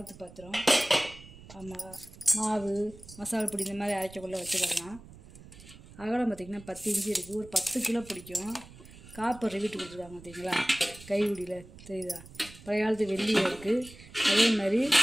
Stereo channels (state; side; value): noise; right; rumble, 19 dB below the sound